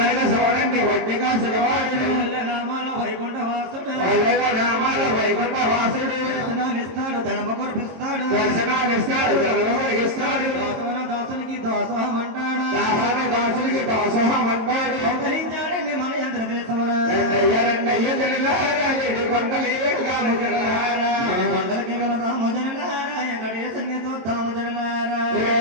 చూడండి ఒట్టుగా సులవాడు నామాల వైకుంఠ వాసుడు నామాల వైకుంఠ వాసుడు దర్శనాలిస్తాడు ధనమ కురిపిస్తాడు దర్శనాలిస్తాడు ధనమ కురిపిస్తాడు దాసోన దాసునికి దాసోహం అంటాడు దాసోన దాసునికి దాసోహం అంటాడు అవతరించాడండి మన ఆంధ్రదేశమున రెండయ్య జనలారా ఏడు కొండలు ఏడుగాము జనలారా కొండలకి వెళదాము జనలారా వెంకటేశుని చూద్దాము జనలారా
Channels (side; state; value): left; late; 22 ms